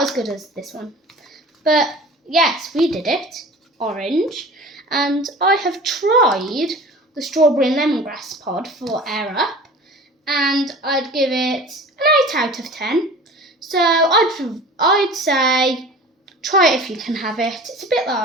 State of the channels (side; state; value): both; normal; correlation 0.40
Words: as good as this one. But yes, we did it. Orange. And I have tried the strawberry and lemongrass pod for Air Up, and I'd give it an 8 out of 10. So I'd say try it if you can have it. It's a bit